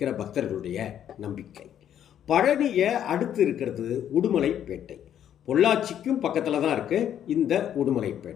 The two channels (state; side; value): quieter; right; 10.0 dB